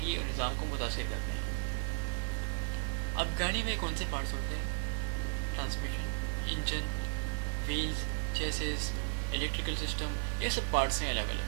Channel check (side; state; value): left; silent; digital silence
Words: اور نظام کو متاثر کرتے ہیں. اب گاڑی میں کون سے پارٹس ہوتے ہیں؟ Transmission, engine, wheels, chassis, electrical system, یہ سب پارٹس ہیں الگ